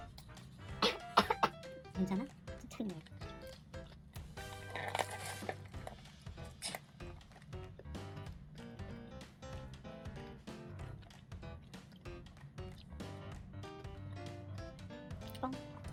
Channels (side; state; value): both; identical; correlation 1.00